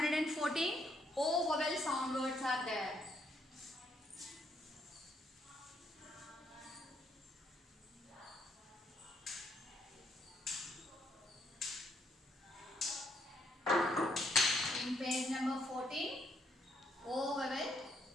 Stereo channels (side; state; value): both; normal; correlation 0.73